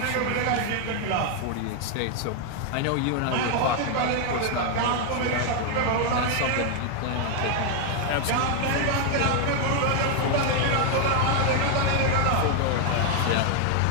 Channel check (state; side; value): different; both; correlation 0.01